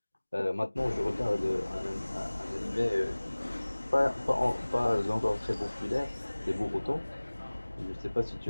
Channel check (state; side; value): inverted; both; correlation -1.00